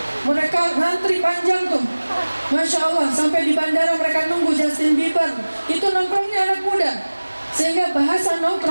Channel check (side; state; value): both; inverted; correlation -1.00